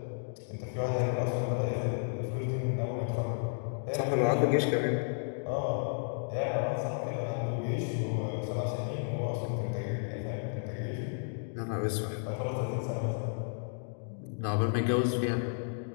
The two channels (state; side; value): silent; right; digital silence